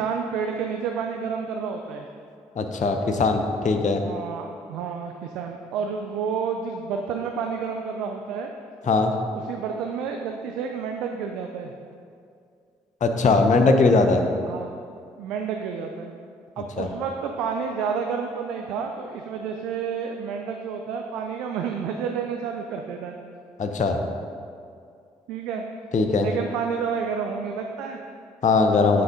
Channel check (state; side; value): normal; both; correlation 0.52